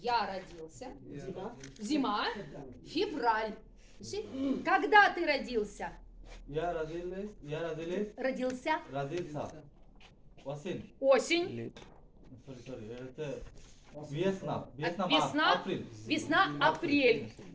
родился. Зима. Февраль. Когда ты родился? Родился. Осень. Весна. Весна. Апрель.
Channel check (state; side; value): identical; both; correlation 1.00